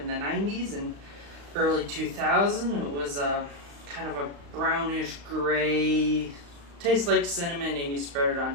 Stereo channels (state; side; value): late; left; 35 ms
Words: the 90s and early 2000s. It was kind of a brownish gray, tastes like cinnamon, and you spread it on